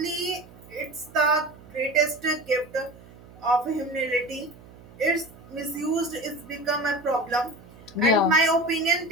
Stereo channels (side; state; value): right; noise; hum, 21 dB below the sound